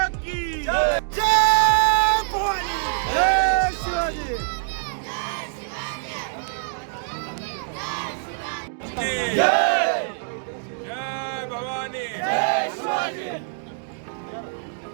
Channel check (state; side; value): silent; left; digital silence